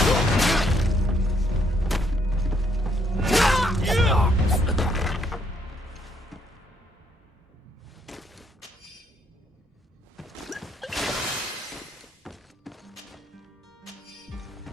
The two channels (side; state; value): both; normal; correlation 0.70